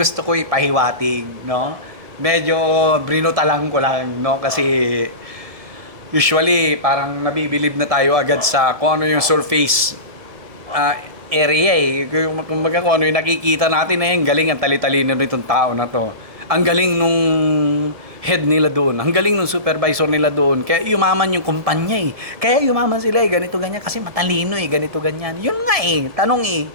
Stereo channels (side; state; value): left; late; 1.7 ms